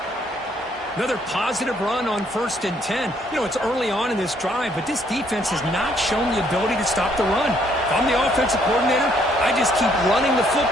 Another positive run on 1st and 10. You know, it's early on in this drive, but this defense has not shown the ability to stop the run. If I'm the offensive coordinator, I just keep running the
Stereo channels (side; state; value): both; normal; correlation 0.68